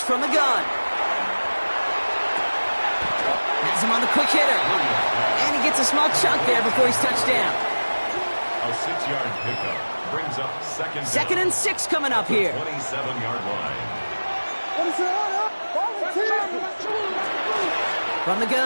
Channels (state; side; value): inverted; both; correlation -1.00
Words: from the gun. Has him on the quick hitter. And he gets a small chunk there before he's touched down. A 6-yard pickup brings up second and 6 coming up here. 27-yard line. From the